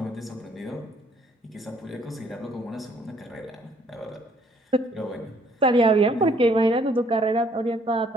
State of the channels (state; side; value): normal; both; correlation 0.63